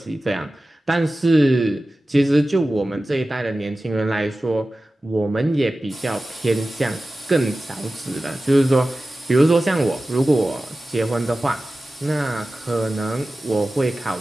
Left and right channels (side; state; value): both; normal; correlation 0.95